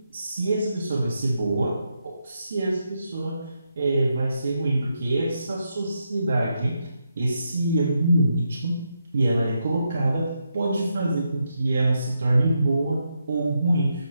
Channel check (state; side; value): inverted; both; correlation -0.83